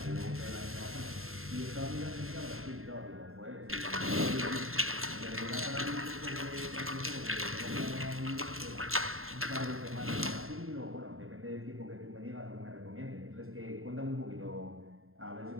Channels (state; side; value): late; left; 0.61 ms